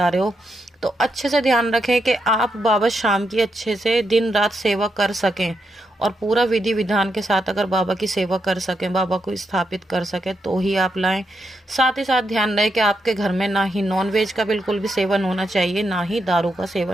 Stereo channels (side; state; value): both; normal; correlation 0.83